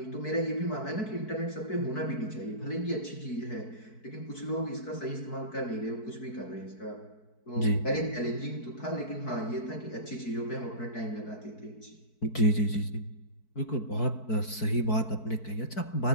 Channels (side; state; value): right; late; 4.6 ms